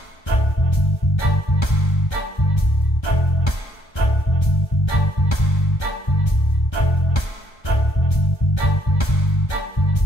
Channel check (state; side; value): late; right; 1.3 ms